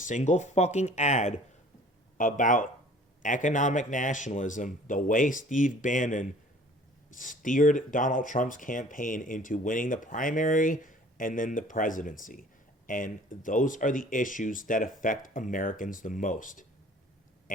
fucking ad about economic nationalism the way Steve Bannon steered Donald Trump's campaign into winning the primary and then the presidency. And those are the issues that affect Americans the most.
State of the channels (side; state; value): both; normal; correlation 0.51